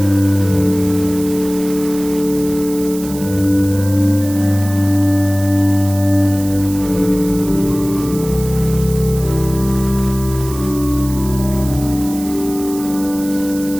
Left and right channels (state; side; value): noise; right; hiss, 14 dB below the sound